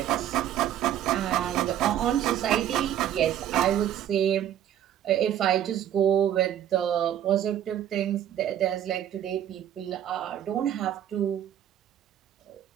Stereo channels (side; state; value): left; quieter; 10.8 dB